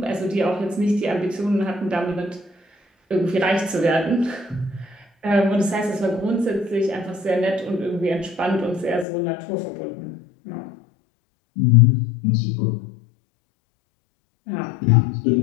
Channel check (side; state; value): right; drops out; at 9.1 s